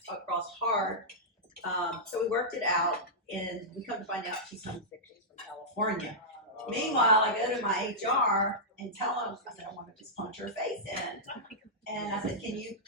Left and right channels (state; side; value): normal; both; correlation -0.12